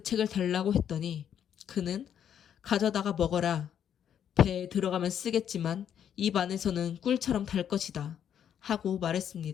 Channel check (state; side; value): quieter; right; 9.1 dB